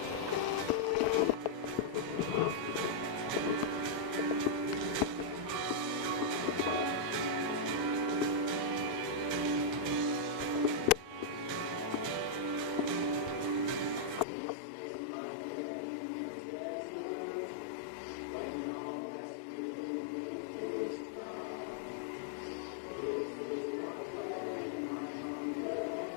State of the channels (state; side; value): drops out; right; at 14.2 s